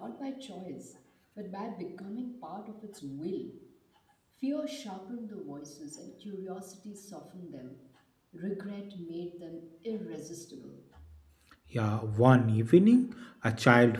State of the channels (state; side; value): identical; both; correlation 1.00